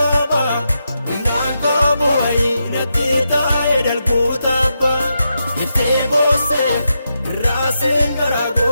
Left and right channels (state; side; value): inverted; both; correlation -0.86